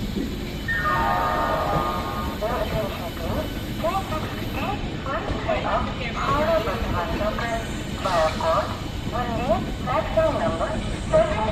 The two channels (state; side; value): identical; both; correlation 1.00